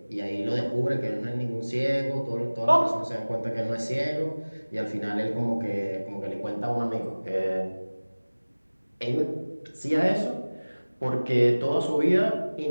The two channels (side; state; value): both; inverted; correlation -1.00